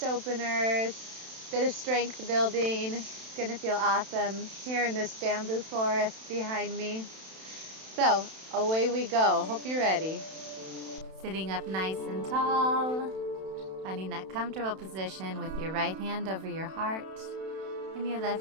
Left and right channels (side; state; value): left; late; 31 ms